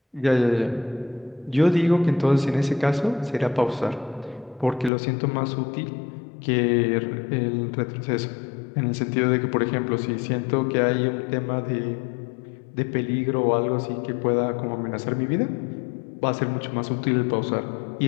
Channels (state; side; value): drops out; right; at 4.9 s